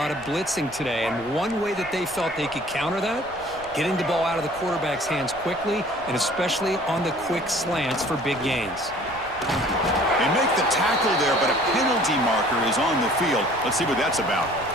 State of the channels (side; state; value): left; noise; rumble, 23 dB below the sound